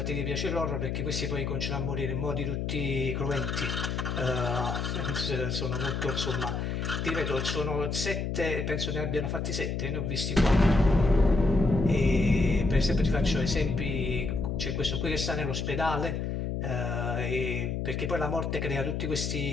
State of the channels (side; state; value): left; noise; hum, 2 dB below the sound